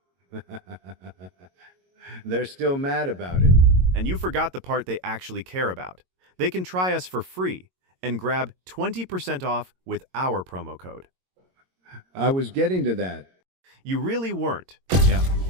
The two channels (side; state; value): left; late; 22 ms